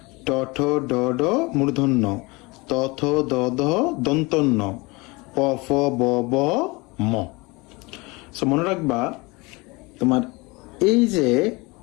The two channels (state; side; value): quieter; right; 25.1 dB